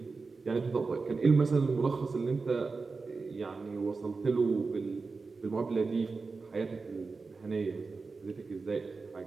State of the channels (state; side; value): quieter; left; 4.3 dB